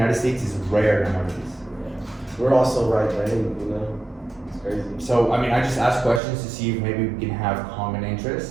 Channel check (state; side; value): drops out; left; at 6.2 s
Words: States is rare nowadays. We're also right-brained, you know? It's crazy. So, I just ask questions to see if maybe we can have common